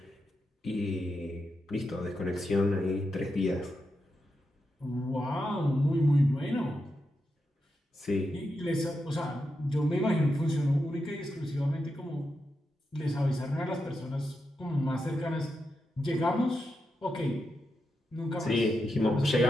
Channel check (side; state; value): both; normal; correlation 0.87